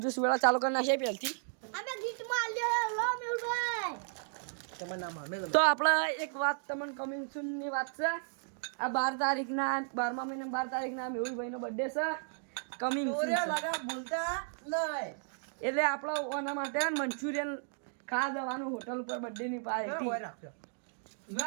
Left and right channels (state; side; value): silent; left; digital silence